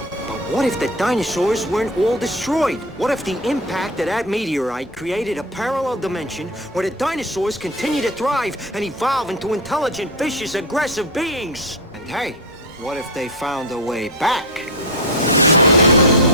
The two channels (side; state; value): both; normal; correlation 0.17